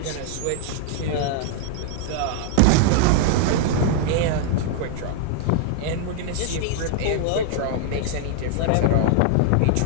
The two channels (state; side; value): different; both; correlation 0.00